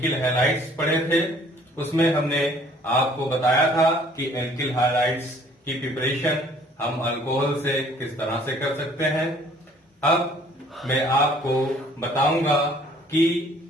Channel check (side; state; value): both; normal; correlation 0.57